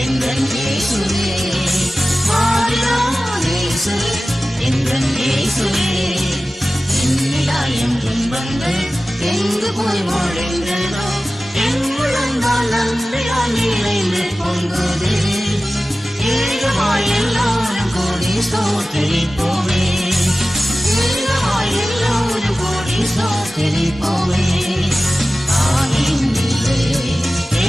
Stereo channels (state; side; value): normal; both; correlation 0.96